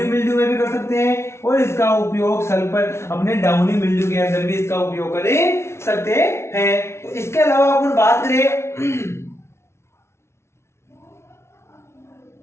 मिल्ड्यू में भी कर सकते हैं, और इसका उपयोग सल्फर, अपने डाउनी मिल्ड्यू के अंदर भी इसका उपयोग कर सकते हैं। तो इसके अलावा अपन बात करें,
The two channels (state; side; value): late; right; 0.13 ms